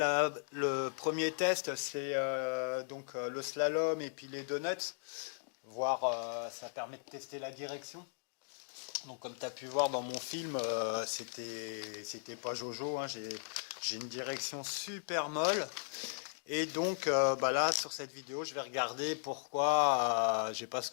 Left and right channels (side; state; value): right; silent; digital silence